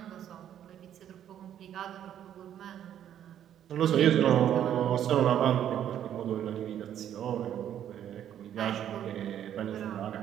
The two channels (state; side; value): quieter; left; 10.3 dB